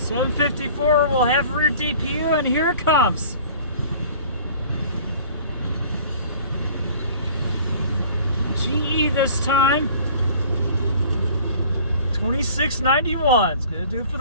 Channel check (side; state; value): both; inverted; correlation -0.48